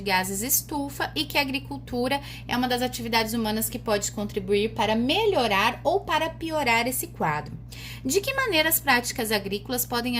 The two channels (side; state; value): both; identical; correlation 1.00